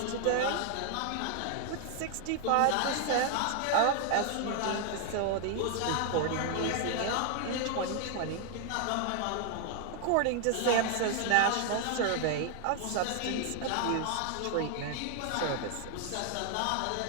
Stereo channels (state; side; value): different; both; correlation 0.00